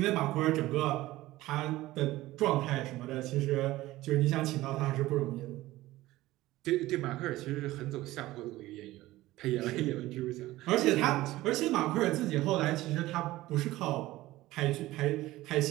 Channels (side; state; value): left; quieter; 17.2 dB